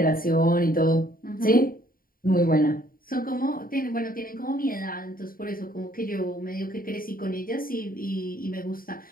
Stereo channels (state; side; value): late; right; 0.41 ms